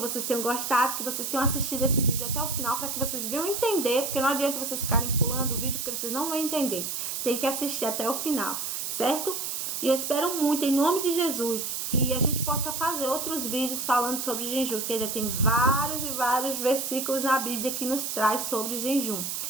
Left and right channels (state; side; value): noise; right; hiss, 3 dB below the sound